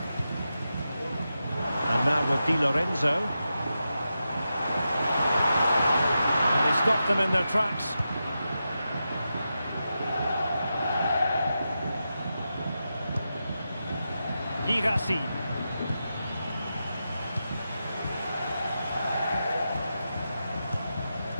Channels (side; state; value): both; inverted; correlation -0.89